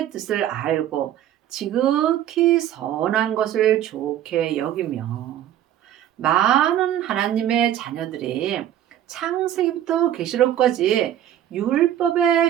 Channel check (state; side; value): quieter; left; 11.4 dB